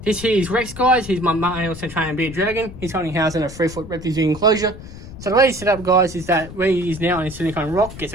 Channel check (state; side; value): noise; left; rumble, 14 dB below the sound